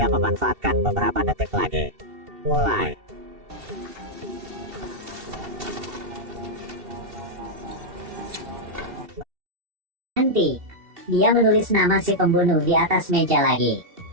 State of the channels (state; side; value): late; left; 2.7 ms